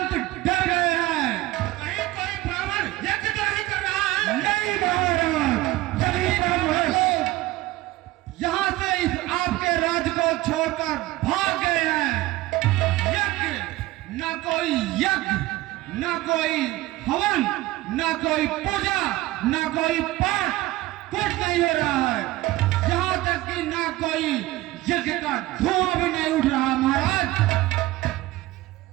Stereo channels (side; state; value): left; quieter; 17.6 dB